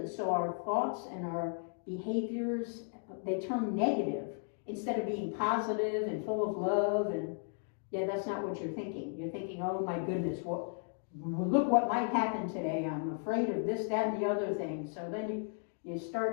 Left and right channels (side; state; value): right; silent; 54 dB below the other